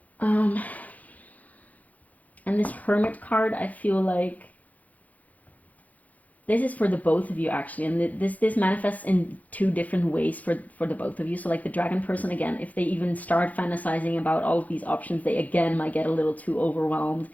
And this Hermit card, I feel like this is for the both of you actually, and this manifests in two different ways for the both of you. So like the dragon person, again, if they even start fantasizing about all of these options, they again might get a little too overwhelmed.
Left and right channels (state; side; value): late; right; 0.077 ms